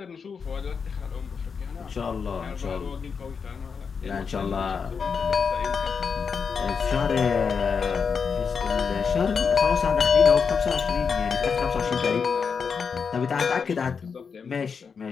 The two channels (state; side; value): quieter; right; 5.9 dB